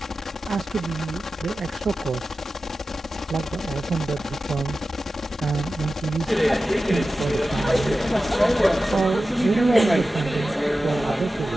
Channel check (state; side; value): normal; both; correlation 0.94